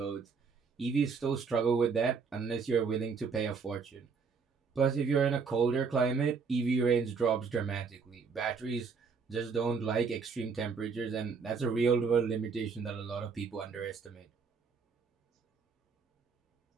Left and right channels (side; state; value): left; quieter; 5.4 dB